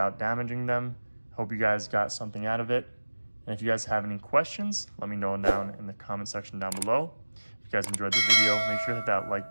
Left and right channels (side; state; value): both; inverted; correlation -1.00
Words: damaging them. Hope you guys got something out of it. And if you guys have any questions, let me know down in the comment section down below. If you guys enjoyed the video, make sure to hit that like